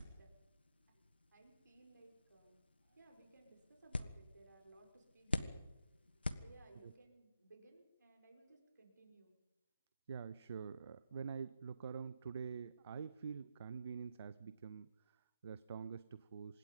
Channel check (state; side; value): inverted; both; correlation -0.85